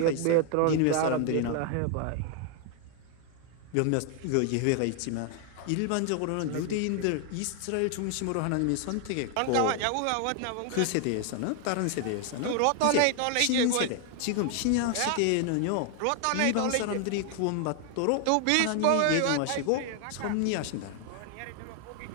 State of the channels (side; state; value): both; different; correlation 0.00